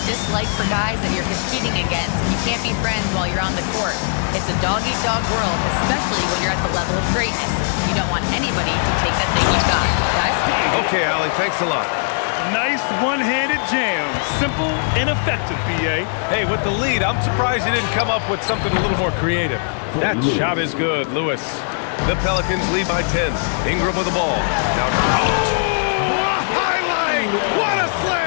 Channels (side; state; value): right; silent; digital silence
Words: dislike for guys that you're competing against, and you can't be friends while you're on the court. It's a dog-eat-dog world, especially when you're at the level of greatness. You don't want anybody to take that thing you've got. Guys? Okay, Allie, thanks a lot. Nice one-handed jam. Simple and effective, BA. Hey, with the lead, I'm surprised he didn't come up with something a little more creative. That shot is good, Lewis. The Pelicans lead by 10. Ingram with the ball. Now, oh, a highlight! What a